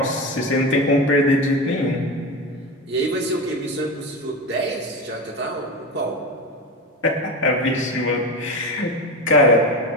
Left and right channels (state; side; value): normal; both; correlation 0.22